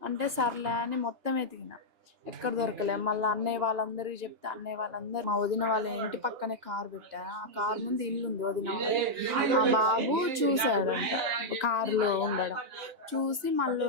అంటే సర్లే అని మొత్తం ఎతికిన, ఎక్కడ దొరకలే. మళ్ళీ అన్నయ్య వాళ్ళందరికీ చెప్తే అన్నయ్య వాళ్ళందరూ మా వదిన వాళ్ళ ఇంటి పక్కనే కారు పెట్టారు. ఆ కారు ముందు ఇల్లు ఉంది వదిన వాళ్ళ. ఆ బాబు చూశాడంట కారులో ఉండడం. చూసి మళ్ళీ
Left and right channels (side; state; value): left; late; 2.9 ms